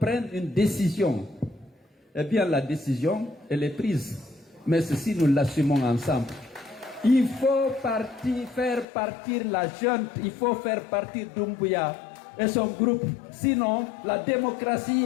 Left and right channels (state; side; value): drops out; right; at 8.8 s